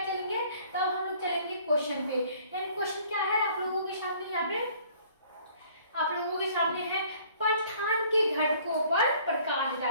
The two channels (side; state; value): both; inverted; correlation -0.56